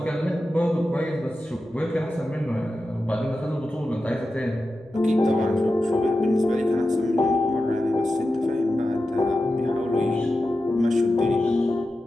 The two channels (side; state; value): both; normal; correlation 0.92